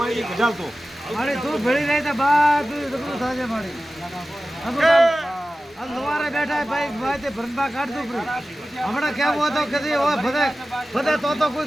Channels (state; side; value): normal; both; correlation 0.95